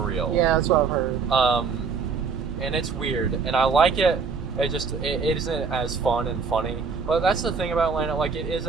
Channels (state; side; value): quieter; left; 5.2 dB